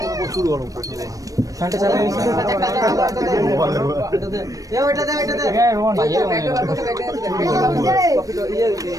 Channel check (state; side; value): late; left; 0.16 ms